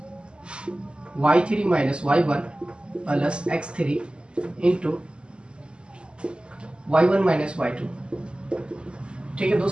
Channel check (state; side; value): late; left; 0.051 ms